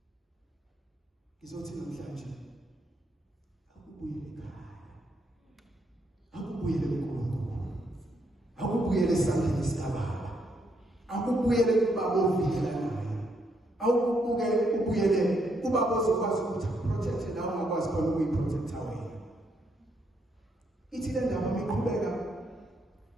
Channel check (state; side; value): normal; both; correlation 0.75